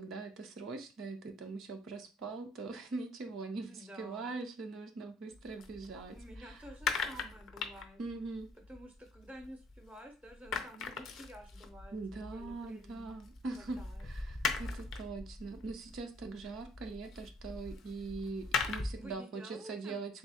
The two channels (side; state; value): both; normal; correlation 0.60